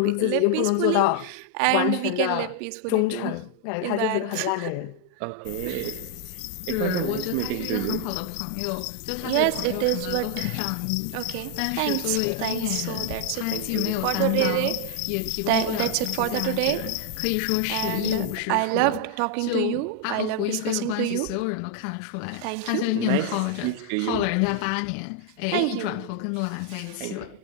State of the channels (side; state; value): both; different; correlation 0.00